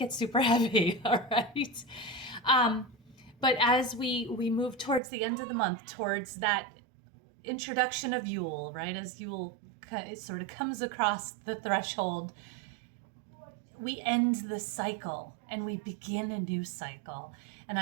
super heavy, all right? But as we move towards the end of the month, towards that introduction of Yule, right? As Yule sort of comes across the threshold, we end the cycle and we begin a new cycle. And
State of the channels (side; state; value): left; drops out; at 5.0 s